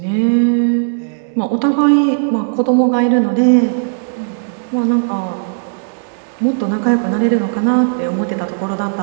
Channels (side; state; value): left; silent; digital silence